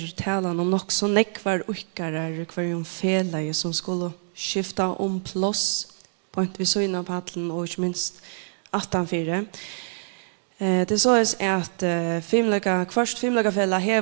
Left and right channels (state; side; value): silent; left; digital silence